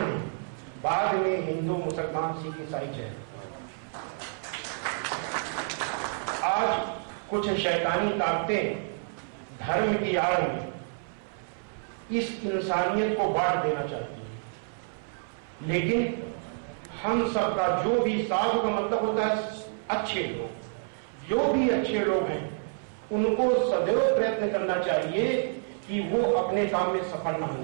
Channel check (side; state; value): left; silent; 59 dB below the other